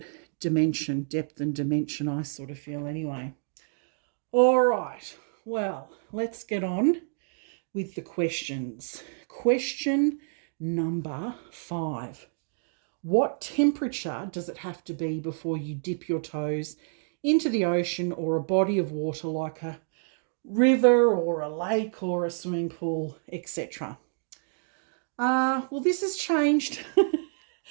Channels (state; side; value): silent; left; digital silence